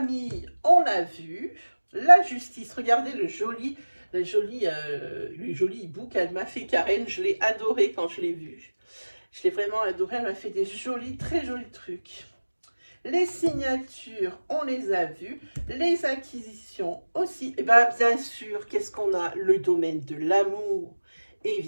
on l'a vu. La justice, regardez le joli hibou qu'elle m'a fait Karen. Je l'ai adoré quand je l'ai vu. Je l'ai vraiment adoré. Elle m'a fait des jolis, très jolis trucs. Les signatures, on les a vues. Les acquisitions aussi. Et bien, bien sûr, qu'est-ce qu'on a? Le domaine de l'amour.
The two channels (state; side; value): inverted; both; correlation -1.00